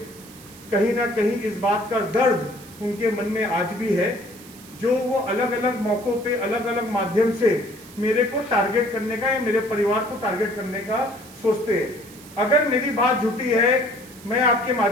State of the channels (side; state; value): right; noise; hiss, 20 dB below the sound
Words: कहीं ना कहीं इस बात का दर्द उनके मन में आज भी है, जो वो अलग अलग मौकों पे अलग अलग माध्यम से मेरे को टारगेट करने का या मेरे परिवार को टारगेट करने का सोचते हैं। अगर मेरी बात झूठी है, मैं आपके